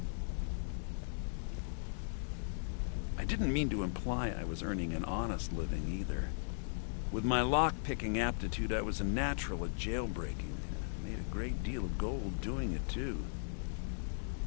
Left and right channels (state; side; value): silent; right; digital silence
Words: I didn't mean to imply I was earning an honest living either. With my lock-picking aptitude, I was a natural at jailbreaking. I made a great deal of gold doing it, too.